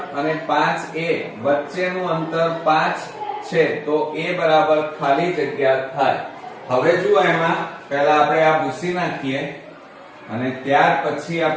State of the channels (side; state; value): both; identical; correlation 1.00